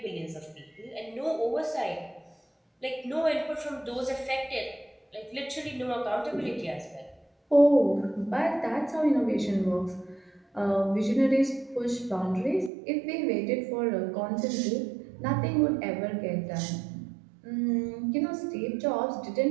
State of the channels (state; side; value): drops out; left; at 12.7 s